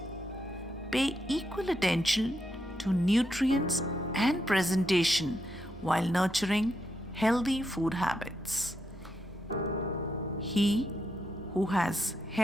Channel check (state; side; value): normal; both; correlation 0.81